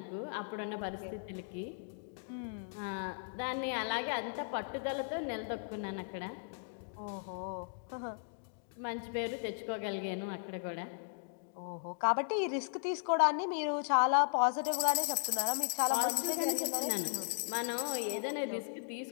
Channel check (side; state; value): right; silent; digital silence